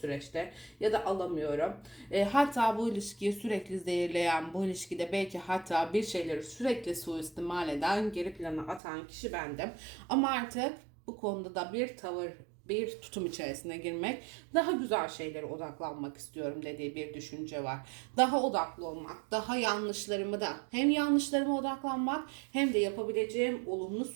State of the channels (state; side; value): drops out; left; at 8.8 s